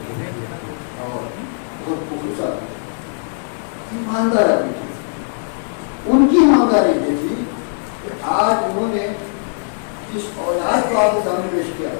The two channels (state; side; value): silent; right; 65 dB below the other